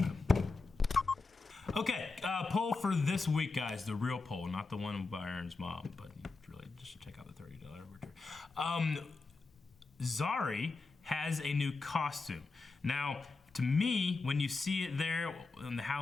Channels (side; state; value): right; quieter; 3.9 dB